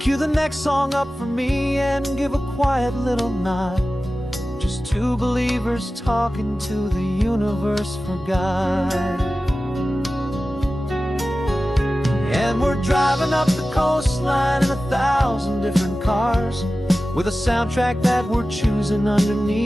the next song up for me and give a quiet little nod, just two believers talking to the universe for God. And we're driving up the coastline in 1,000 different cars, with a soundtrack that we're choosing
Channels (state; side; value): normal; both; correlation 0.95